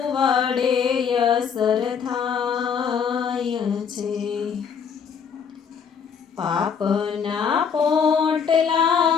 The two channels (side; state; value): right; quieter; 6.8 dB